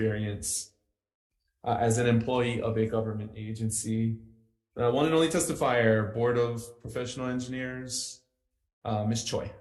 as an employee of a government agency. One and only testifier, Board of Professional Engineers, Ms. Choi.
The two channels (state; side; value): identical; both; correlation 1.00